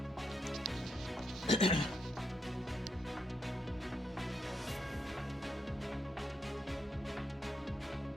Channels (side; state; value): both; normal; correlation 0.81